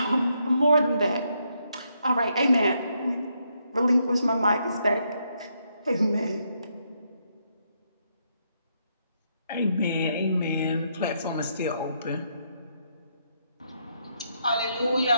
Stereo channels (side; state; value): both; inverted; correlation -0.77